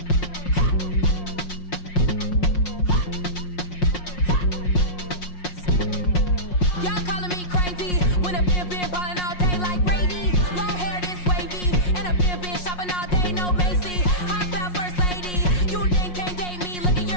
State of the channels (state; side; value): late; right; 5.6 ms